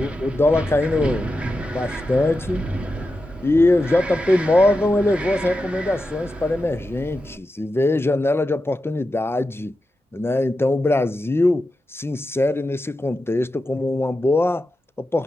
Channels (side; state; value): both; normal; correlation 0.90